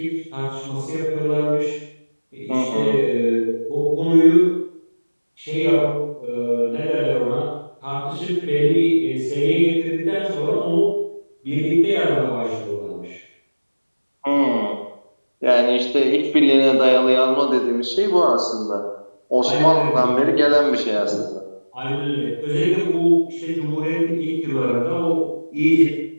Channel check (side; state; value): both; inverted; correlation -1.00